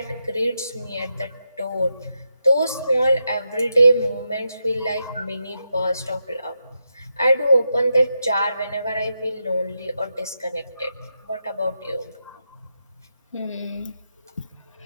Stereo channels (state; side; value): inverted; both; correlation -0.85